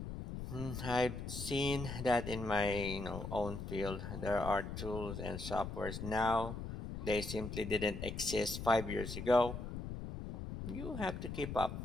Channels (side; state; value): left; noise; rumble, 6 dB below the sound